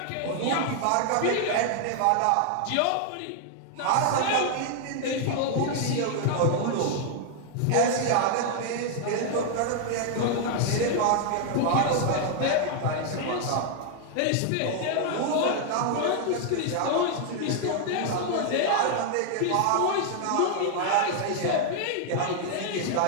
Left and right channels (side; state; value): both; different; correlation 0.00